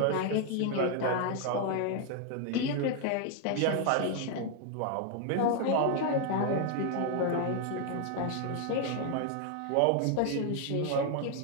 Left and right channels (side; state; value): both; different; correlation 0.00